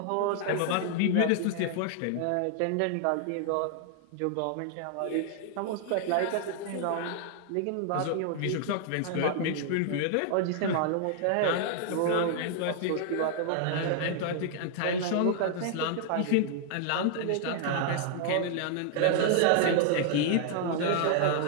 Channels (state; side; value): different; both; correlation 0.00